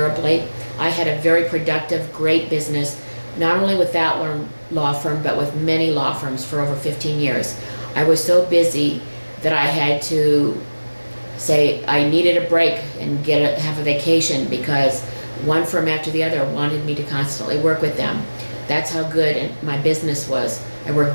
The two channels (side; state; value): both; inverted; correlation -1.00